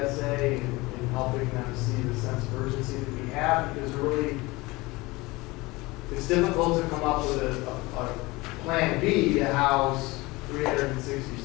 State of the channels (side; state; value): right; quieter; 22.2 dB